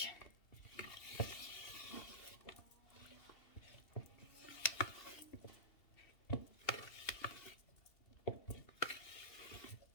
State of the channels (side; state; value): right; late; 2.7 ms